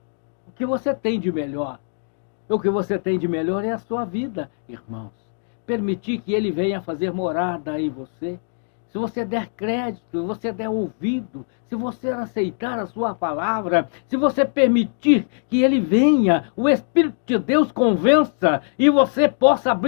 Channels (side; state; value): right; silent; digital silence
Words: o que você tem de melhor. O que você tem de melhor é a sua vida, irmãos. Permitir que Ele venha fazer morada em você. Se você der crédito, se você der ouvido, se você aceitar a sua palavra, se você permitir que Ele venha, o Espírito de Deus convença e você possa